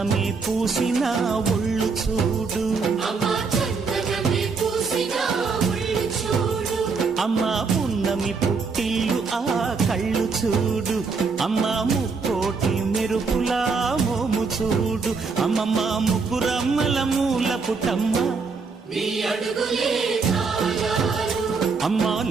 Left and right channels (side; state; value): left; quieter; 4.7 dB